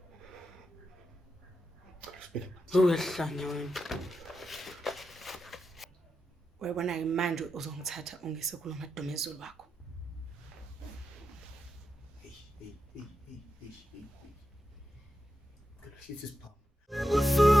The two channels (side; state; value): both; normal; correlation 0.88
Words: Uyahlanya wena. Uyabona ke manje uzongithatha ungise kuloMadumezulu wakho.